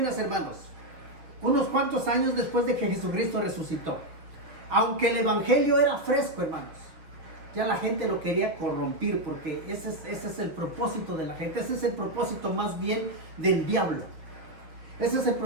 hermanos, unos cuantos años después de que Jesucristo resucitó. Aunque el Evangelio era fresco, hermanos, ya la gente lo quería corrompir, porque ese es el propósito de la gente. Ese es el propósito más bien del diablo. Ese es el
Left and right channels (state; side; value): late; left; 6.1 ms